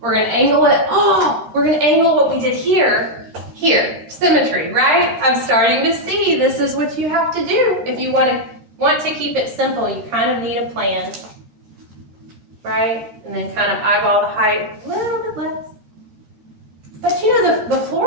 gonna angle it. Oh, we're gonna angle what we did here. Here, symmetry, right? I'm starting to see this is what you have to do. If you want to keep it simple, you kind of need a plan, right? And then kind of eyeball the height a little bit less. But the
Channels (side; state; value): left; late; 13 ms